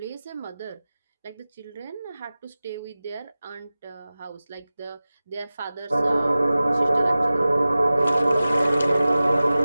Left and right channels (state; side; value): inverted; both; correlation -0.97